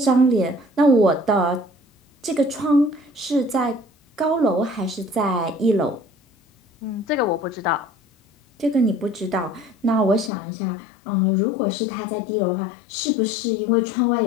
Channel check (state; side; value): drops out; right; at 10.3 s